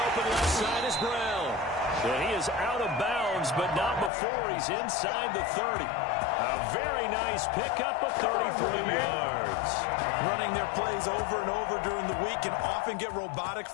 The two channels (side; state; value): right; drops out; at 4.1 s